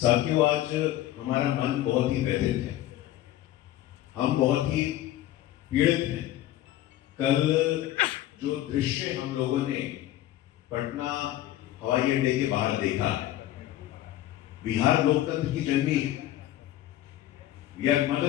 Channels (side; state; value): right; quieter; 13.8 dB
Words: आज हमारा मन बहुत ही व्यथित है, हम बहुत ही पीड़ित हैं। कल जो दृश्य हम लोगों ने पटना हवाई अड्डे के बाहर देखा है, बिहार लोकतंत्र की जननी है, we are